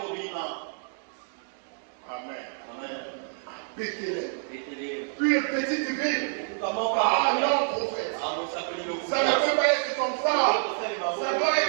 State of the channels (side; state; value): left; silent; 59 dB below the other